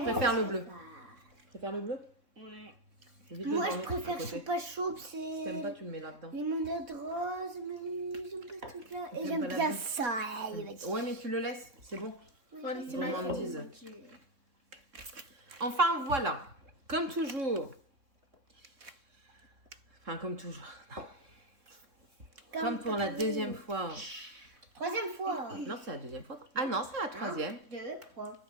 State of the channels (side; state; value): left; late; 3.6 ms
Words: préfère le bleu. Tu préfères le bleu? Ouais. Évite le Moi, je brun à préfère côté. choupa choups. Si C'est t'aimes pas, tu le mets là-dedans. limonade rose, mais j'aime pas tout là. Et T'aimes j'aime pas la bien bleue? ça. Ouais, mais tu le laisses, c'est bon. C'est Gourmandise. Enfin, voilà. Comme toujours. Enfin, comme toujours. Non. Comme pour la deuxième fois. Troisième fois. Non, c'est la deuxième fois. Ah non, c'est la troisième. 2, 3.